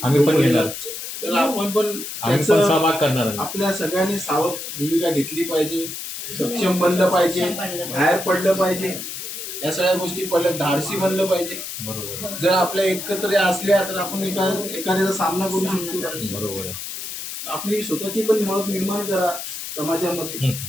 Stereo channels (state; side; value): noise; left; hiss, 7 dB below the sound